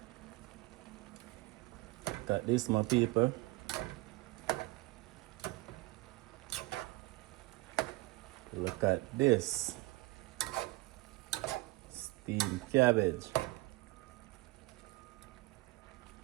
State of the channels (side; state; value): left; quieter; 21.5 dB